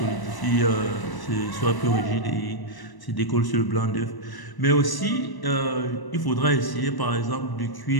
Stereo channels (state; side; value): late; right; 1.0 ms